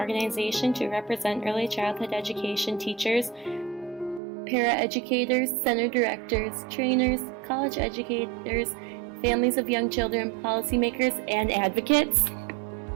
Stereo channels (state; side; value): drops out; left; at 4.2 s